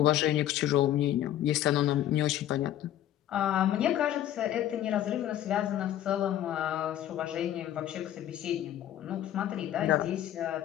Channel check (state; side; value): quieter; right; 11.9 dB